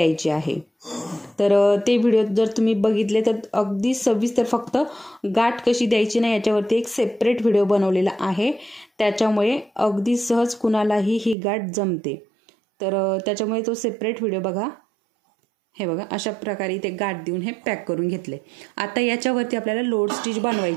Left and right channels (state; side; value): drops out; left; at 11.4 s